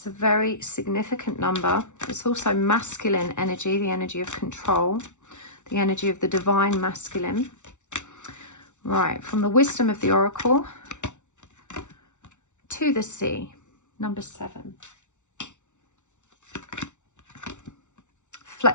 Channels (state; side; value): late; right; 0.84 ms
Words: a very significant number. It's also masculine energy, the energy of control, the energy of the divine masculine. Right, from the wisdom of the oracle to the sea, number 7.